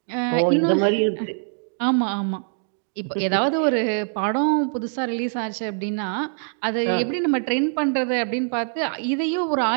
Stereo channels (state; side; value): silent; left; 63 dB below the other